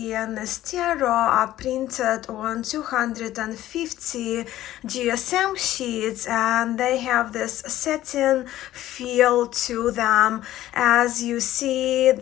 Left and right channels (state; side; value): quieter; right; 14.1 dB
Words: this tarot are printed on 250 GSM sheets, and they have this satin feel to them. As you see,